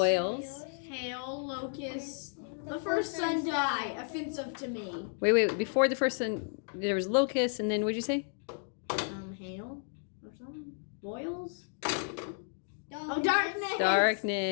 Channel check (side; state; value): right; silent; 56 dB below the other